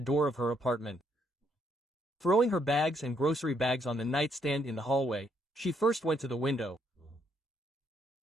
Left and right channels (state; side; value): normal; both; correlation 0.72